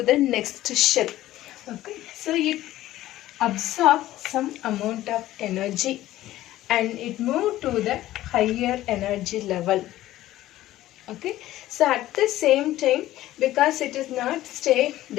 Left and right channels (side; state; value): right; quieter; 14.9 dB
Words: the next shell. Okay. So it absorbs some amount of energy and it move to the higher energy level. Okay, so at the same time, because it is not stay,